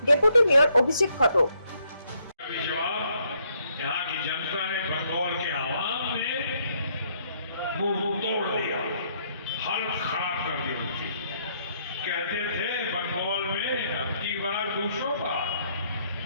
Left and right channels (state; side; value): inverted; both; correlation -0.71